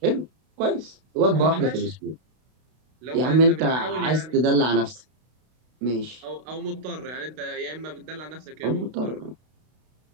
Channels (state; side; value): late; left; 32 ms